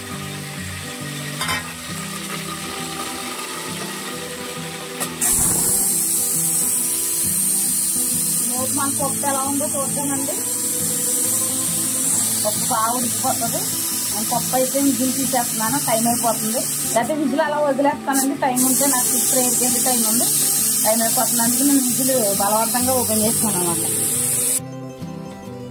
మన పప్పు ఎలా ఉందో చూద్దామండి. పప్పు బాగా ఉడికిపోతుంది. నేను పప్పు అయితే విజిల్ తీసేస్తున్నాను, టైం అయిపోతుంది. లేకపోతే విజిల్ అలా వదిలేస్తానండి, టైం ఉంటే నాకు ఇప్పుడు ఏడికెళ్ళి టైం ఉంది, టైం అయిపోతుంది. అందుకే నేను విజిల్ బలవంతంగా ఓపెన్ చేస్తాను అన్నమాట.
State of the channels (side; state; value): both; identical; correlation 1.00